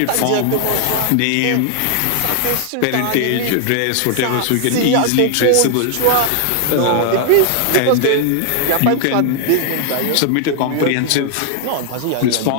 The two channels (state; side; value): different; both; correlation 0.00